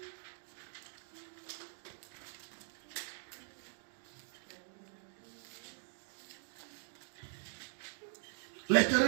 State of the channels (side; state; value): left; silent; digital silence